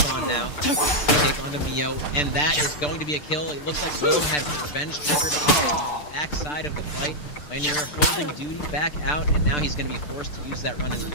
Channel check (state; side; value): late; right; 6.8 ms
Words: now to take onto Mio, and that is going to be a kill. It looks like Willem had revenge triggered off the backside of the fight. Vaynor holding Duty back out, and now he's going to be forced to use that run and